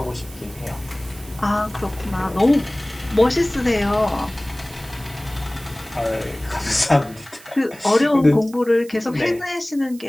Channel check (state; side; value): noise; right; hiss, 21 dB below the sound